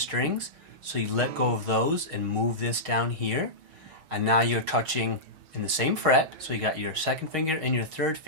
so you let go of those and move this down here, and now you're touching in the same fret, so you got your 2nd finger and your 3rd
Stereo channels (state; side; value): late; left; 6.3 ms